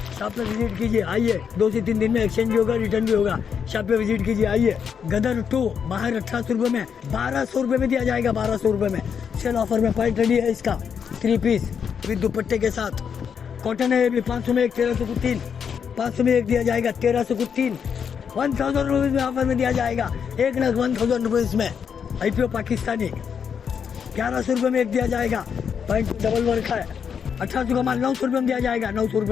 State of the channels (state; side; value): quieter; right; 7.1 dB